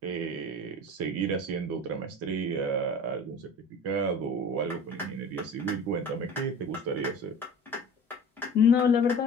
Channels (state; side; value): normal; both; correlation 0.38